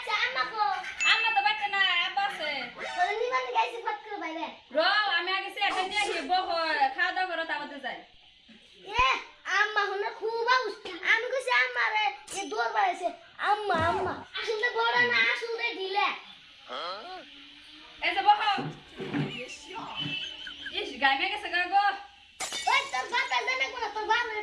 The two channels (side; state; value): both; identical; correlation 1.00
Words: আম্মা কো? আম্মা তো বাড়িতে না, আব্বা আছে। বলে নিবানি গাইছে ফট করে বাইরে। আমি আগে সে একটা নিয়ে আসি, খাওয়া দাওয়া করো তারপরে যাই। এ আম্মা হনে খুব আউস। আমি কইছি আম্মা রে এ দৌড় বাড়াইছে। আম্মা আম্মা আসলে বড় না, আসলে ঢিলে। এই যে বহ। ইস গাই মে গেছে গা গো। ওই তোর বাপের জানে কোন, তোর বাপরে